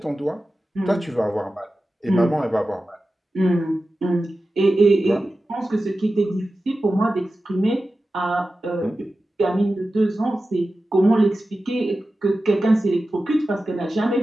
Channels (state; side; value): normal; both; correlation 0.94